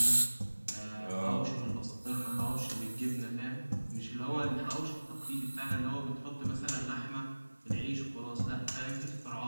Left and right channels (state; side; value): inverted; both; correlation -1.00